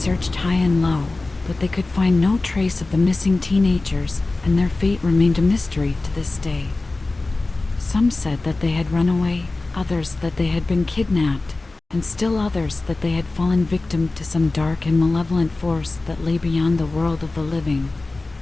high and low, but they could find no trace of the missing teenagers, and their fate remained a mystery to this day. Some said that they had run away, others that they had been kidnapped, and still others that they had fallen victim to some dark and malevolent force that lay beyond the world of the living.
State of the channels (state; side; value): quieter; right; 3.2 dB